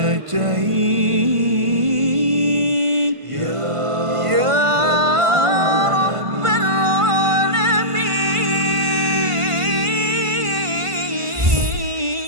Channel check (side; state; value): left; late; 1.5 ms